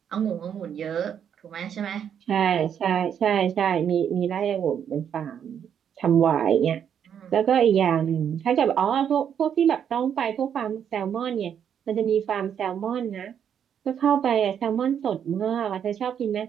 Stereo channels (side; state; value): left; quieter; 8.6 dB